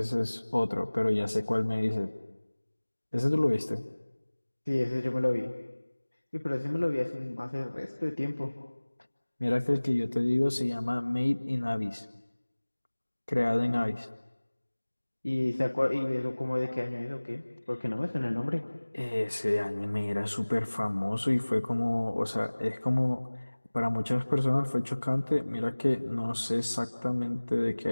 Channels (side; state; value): both; inverted; correlation -1.00